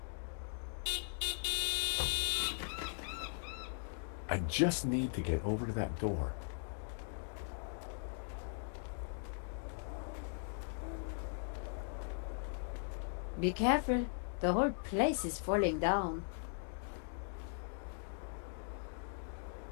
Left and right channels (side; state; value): right; silent; digital silence